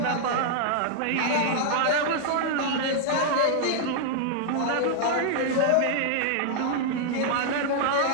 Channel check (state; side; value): different; both; correlation -0.01